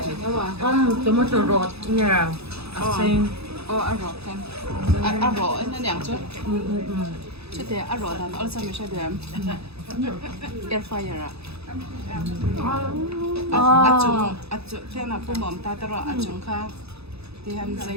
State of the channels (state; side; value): late; left; 0.79 ms